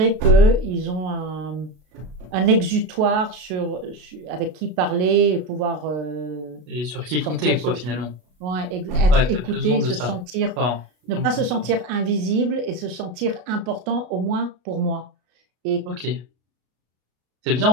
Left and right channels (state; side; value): late; left; 33 ms